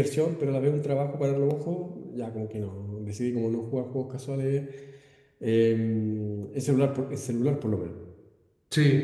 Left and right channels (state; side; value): identical; both; correlation 1.00